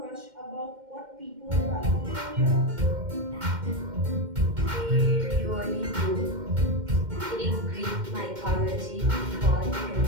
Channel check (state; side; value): late; left; 2.1 ms